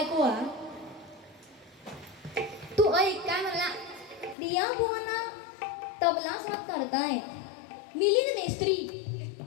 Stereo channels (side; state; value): right; drops out; at 4.4 s